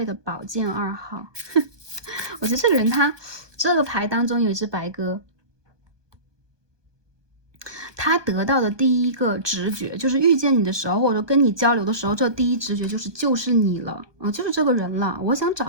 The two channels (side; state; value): left; late; 1.2 ms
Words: 的宝剑2号。我觉得这个人他这个牌当中有一只白鸽。他得到的第一个直觉就是遇见你的时候，或者跟你交流的时候，这第一直觉就是你了啊，就是这个人了。我想找